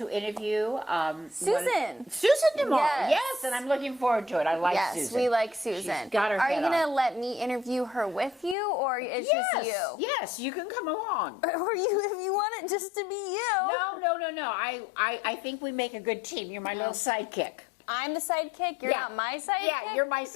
interview Susan. Susan tomorrow. Yes. Yes, and I'm looking forward to it. I like Susan. Yes, we like Susan. She's got her Are you head going to on. let me interview her with you, or it's just you? Yes, you can come along. Or you, if you want it just to be you. No. I think we make a good team. You're my little sidekick. I'm the sidekick? You're not my sidekick? Yeah, you're my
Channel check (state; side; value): drops out; right; at 8.6 s